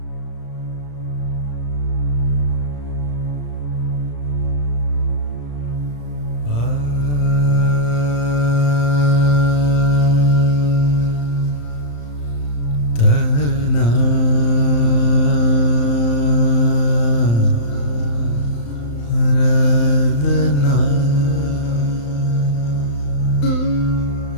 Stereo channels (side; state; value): right; late; 35 ms